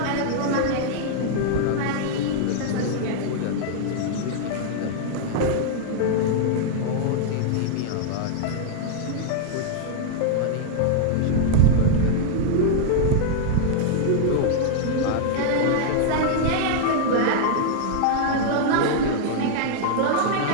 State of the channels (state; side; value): different; both; correlation -0.01